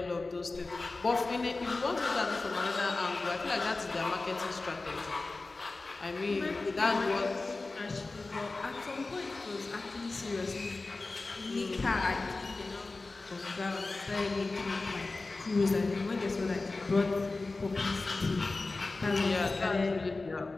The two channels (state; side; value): quieter; right; 3.4 dB